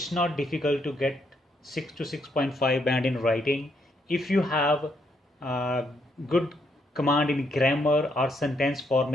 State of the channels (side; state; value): both; normal; correlation 0.75